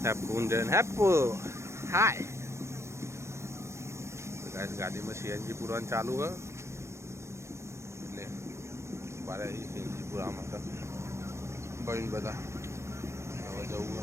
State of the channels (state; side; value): late; left; 0.13 ms